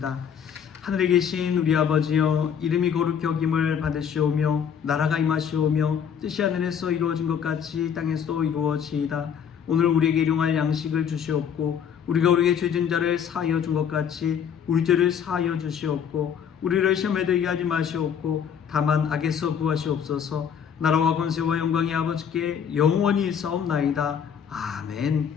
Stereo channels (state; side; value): quieter; right; 7.9 dB